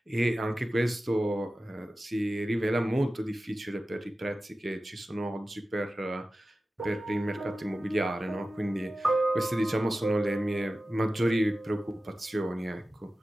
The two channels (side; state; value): both; normal; correlation 0.95